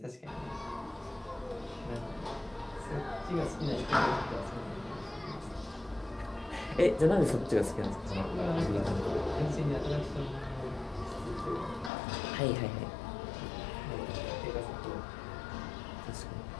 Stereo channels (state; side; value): drops out; right; at 11.9 s